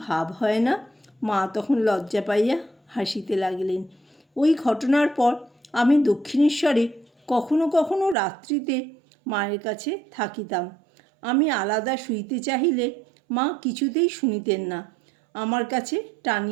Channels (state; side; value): drops out; left; at 8.2 s